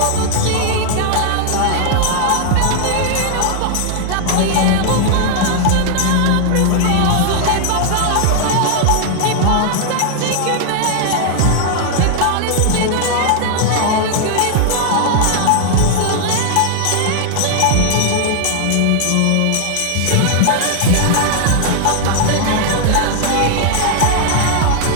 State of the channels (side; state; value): both; different; correlation 0.00